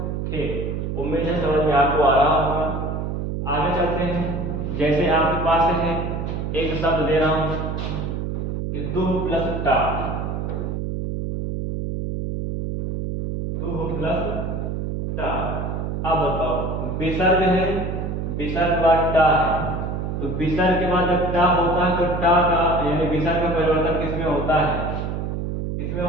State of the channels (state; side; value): noise; right; hum, 3 dB below the sound